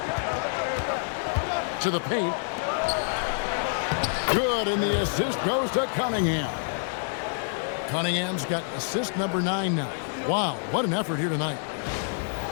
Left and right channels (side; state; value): right; silent; digital silence